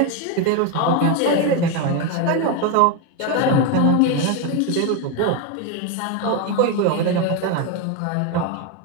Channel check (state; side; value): different; both; correlation 0.02